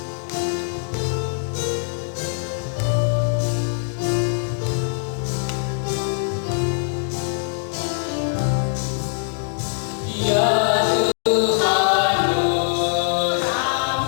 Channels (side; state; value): right; silent; digital silence